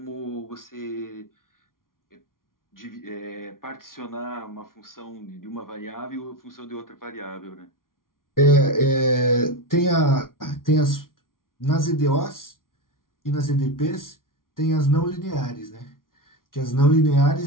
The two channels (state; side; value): late; right; 0.91 ms